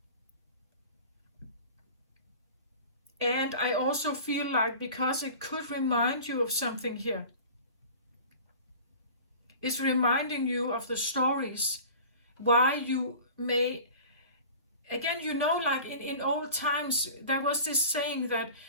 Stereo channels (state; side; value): inverted; both; correlation -0.40